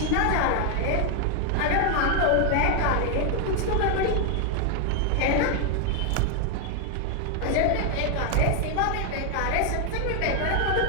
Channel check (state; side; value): different; both; correlation 0.00